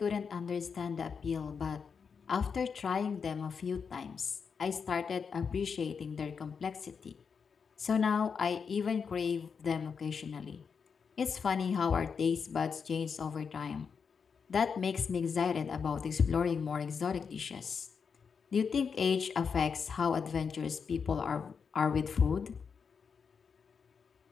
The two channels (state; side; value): quieter; right; 6.0 dB